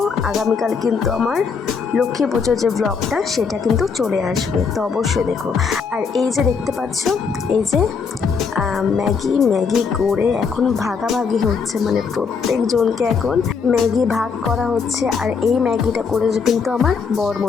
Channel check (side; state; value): right; quieter; 5.6 dB